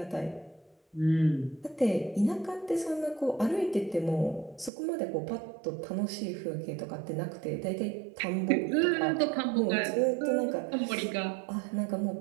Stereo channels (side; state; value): left; drops out; at 4.7 s